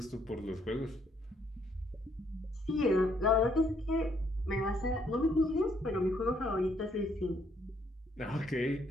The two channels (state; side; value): normal; both; correlation 0.69